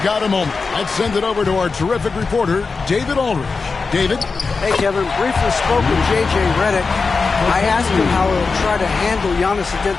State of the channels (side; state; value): right; quieter; 4.5 dB